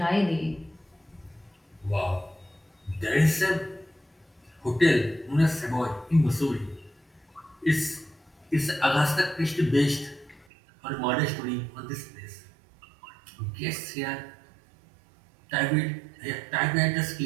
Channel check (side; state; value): left; drops out; at 10.5 s